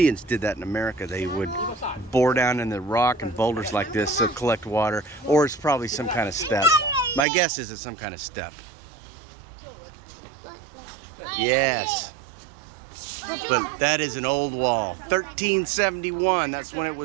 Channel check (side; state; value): left; drops out; at 7.2 s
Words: did that in America. They would bore down in the rock and boulders like this to collect water, or it's probably some kind of step. My guess is it's some kind of step. Yes. But that is an old wall. 1371, that's when it